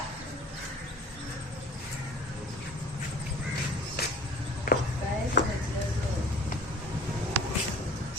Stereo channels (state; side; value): normal; both; correlation 0.46